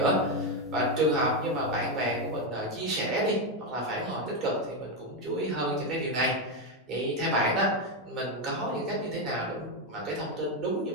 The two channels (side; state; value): both; normal; correlation 0.07